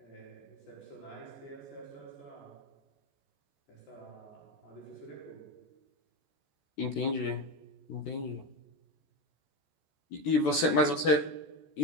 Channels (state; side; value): late; right; 14 ms